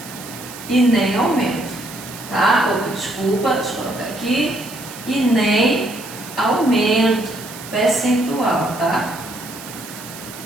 e nem aumento, tá? Opa, desculpa, deixa eu colocar aqui. E nem aumento percentual, tá?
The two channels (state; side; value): noise; right; hiss, 14 dB below the sound